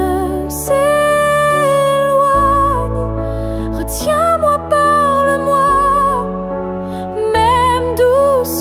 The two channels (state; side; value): identical; both; correlation 1.00